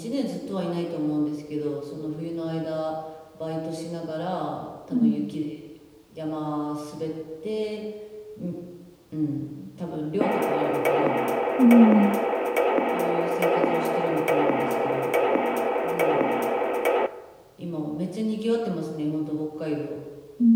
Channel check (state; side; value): identical; both; correlation 1.00